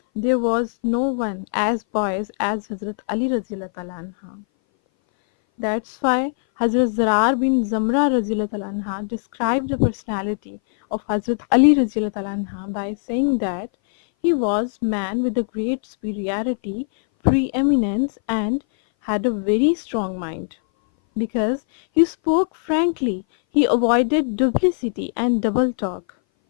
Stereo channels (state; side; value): silent; right; 60 dB below the other